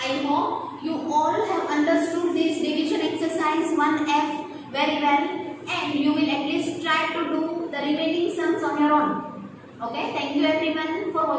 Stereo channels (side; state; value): both; identical; correlation 1.00